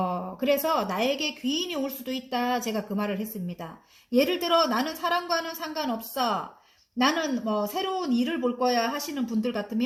그래서 나에게 귀인이 올 수도 있다. 제가 그 말을 했습니다. 예를 들어 나는 사랑과는 상관없어. 나는 뭐 새로운 일을 볼 거야 하시는 분들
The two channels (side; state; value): both; identical; correlation 1.00